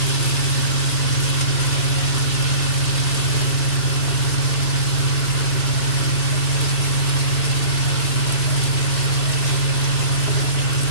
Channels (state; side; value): late; right; 3.0 ms